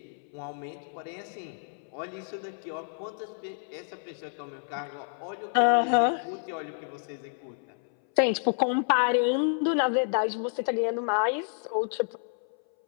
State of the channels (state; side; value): silent; right; 58 dB below the other